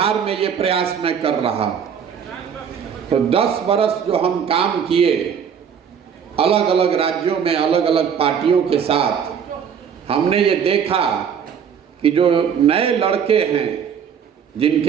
में ये प्रयास मैं कर रहा। तो 10 बरस जो हम काम किए अलग अलग राज्यों में अलग अलग पार्टियों के साथ, हमने ये देखा कि जो नए लड़के हैं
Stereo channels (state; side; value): quieter; left; 7.6 dB